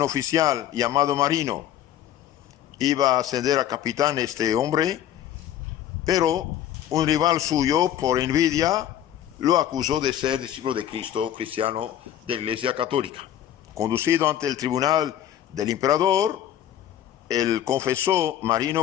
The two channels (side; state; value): right; quieter; 11.3 dB